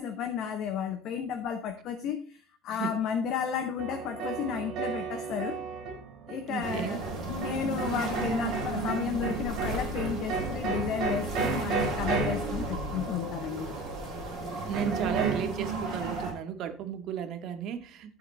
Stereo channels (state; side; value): normal; both; correlation 0.37